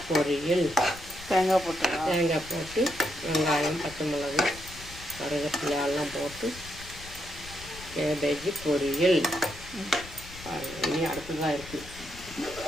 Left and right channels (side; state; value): left; noise; rumble, 16 dB below the sound